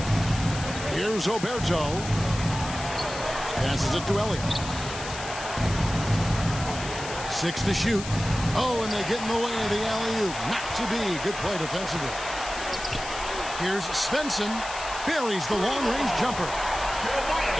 Here's Oberto. Passes it to Elliott. 6 to shoot. Oh, and they get in the way of the alley-oop. Not to be. Good play defensively. Here's Svensson. Buries the long-range jumper.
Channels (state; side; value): noise; left; hiss, 10 dB below the sound